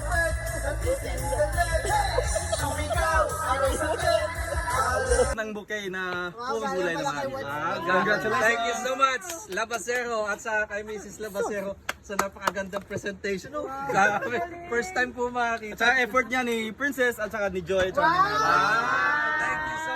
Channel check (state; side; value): identical; both; correlation 1.00